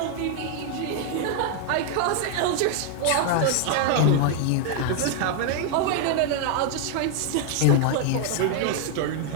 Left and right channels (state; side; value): different; both; correlation 0.00